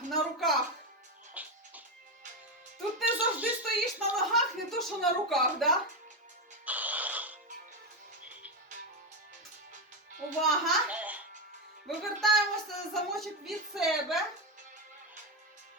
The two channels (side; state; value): both; normal; correlation 0.09